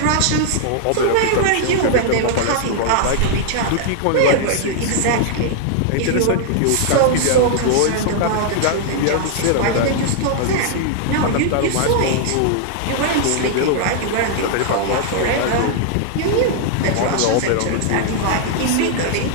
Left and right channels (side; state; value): both; different; correlation 0.00